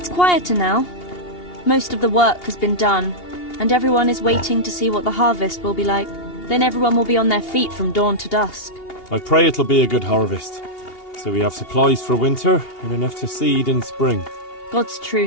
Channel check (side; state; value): right; late; 2.8 ms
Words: quieter now. Most of the work has been done, and everyone is waiting to see what the harvest will be like. Then everyone will be on their feet from dawn to dusk. I pray it'll be a good harvest, so we have supplies for winter and enough to seed in spring. God's